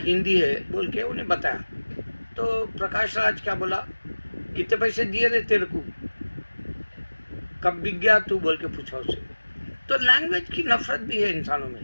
है, बोल के उन्हें बताया। तो प्रकाश राज क्या बोला, कितने पैसे दिए थे तेरे को, कब बिक गया तू, बोल के पूछा उससे। तो लैंग्वेज की नफरत भी है इंसानों में।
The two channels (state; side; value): inverted; both; correlation -1.00